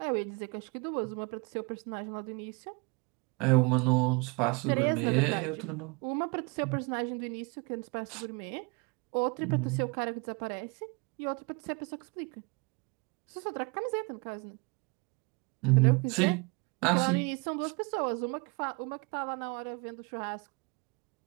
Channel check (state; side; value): quieter; left; 30.7 dB